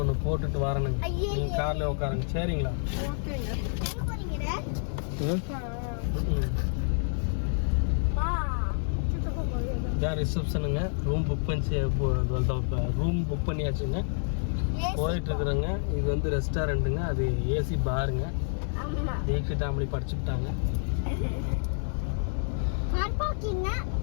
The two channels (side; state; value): right; silent; 59 dB below the other